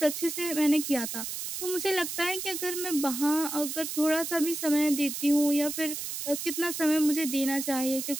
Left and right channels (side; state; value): right; noise; hiss, 5 dB below the sound